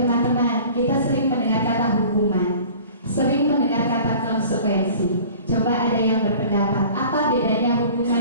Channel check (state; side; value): inverted; both; correlation -0.44